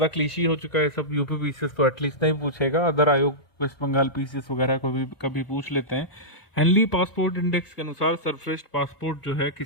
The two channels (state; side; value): late; right; 1.5 ms